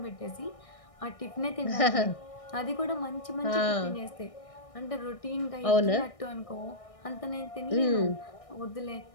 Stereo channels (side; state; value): right; late; 1.6 ms